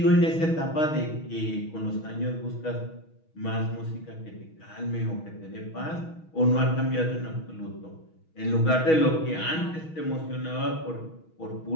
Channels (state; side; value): late; right; 6.3 ms